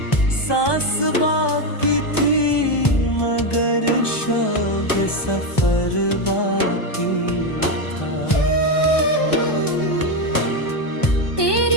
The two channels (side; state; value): right; late; 1.2 ms